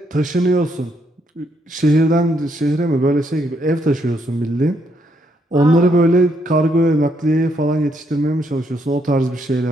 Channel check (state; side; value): normal; both; correlation 0.74